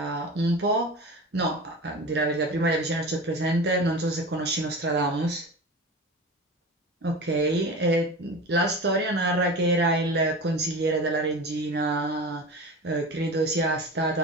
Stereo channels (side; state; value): both; normal; correlation 0.31